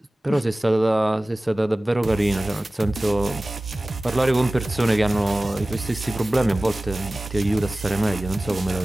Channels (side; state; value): both; normal; correlation 0.97